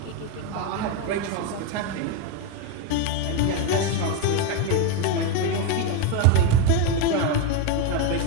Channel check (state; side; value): different; both; correlation 0.02